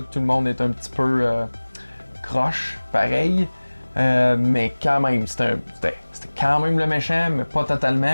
tout le monde est un petit peu croche, pareil, mais quand même, c'était quand même le méchant, mais pas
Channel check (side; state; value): both; inverted; correlation -1.00